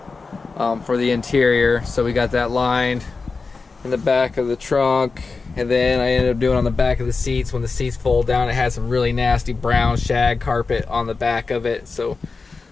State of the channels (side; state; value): right; quieter; 4.3 dB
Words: for the interior. So we got that lined in the back of the trunk, and then I ended up doing on the back of the seats. When the seats fold down, it had some really nasty brown shag carpet on the back of it, so